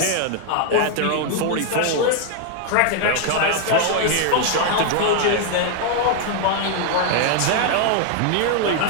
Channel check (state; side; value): different; both; correlation 0.00